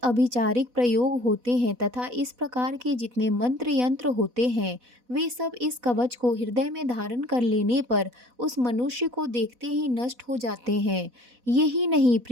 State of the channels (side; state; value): left; late; 4.1 ms